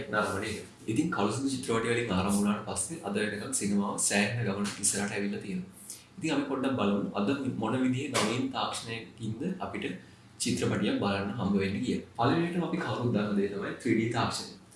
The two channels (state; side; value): identical; both; correlation 1.00